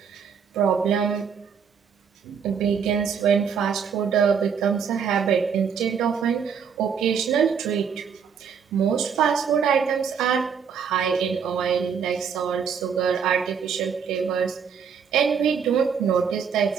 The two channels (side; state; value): left; quieter; 6.9 dB